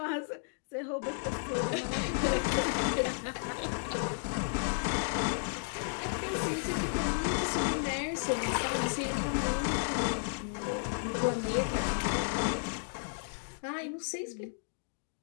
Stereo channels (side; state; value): right; silent; digital silence